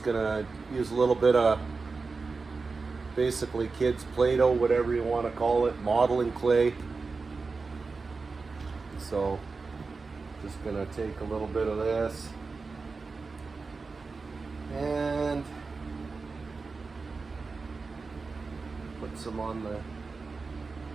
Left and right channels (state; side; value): quieter; left; 4.2 dB